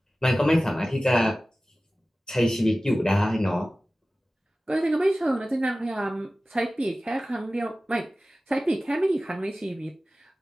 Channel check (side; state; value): both; normal; correlation 0.96